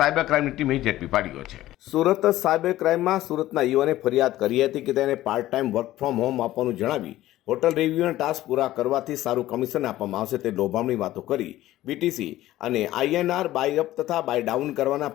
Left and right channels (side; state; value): right; quieter; 15.1 dB